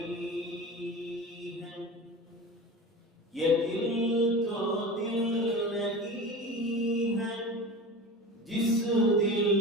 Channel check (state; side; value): normal; both; correlation 0.31